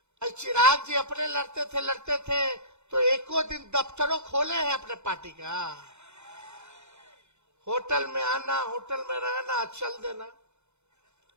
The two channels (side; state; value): left; late; 0.82 ms